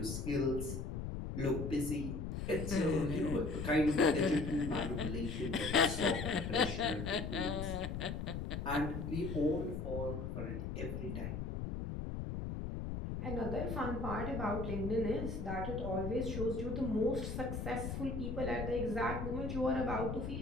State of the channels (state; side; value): noise; left; rumble, 4 dB below the sound